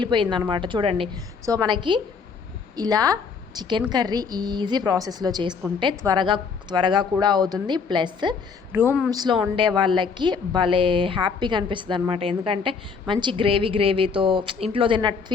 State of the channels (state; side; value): quieter; right; 5.5 dB